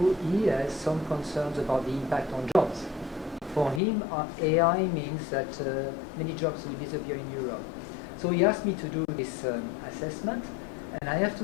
he has some concerns about the impact on jobs. For him, AI means that many jobs will disappear in Europe. So he asked me to do this assessment, and I have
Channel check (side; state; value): right; drops out; at 3.8 s